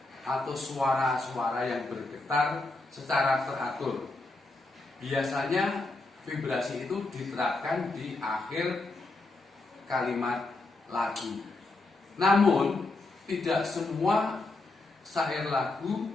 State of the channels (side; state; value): right; quieter; 3.1 dB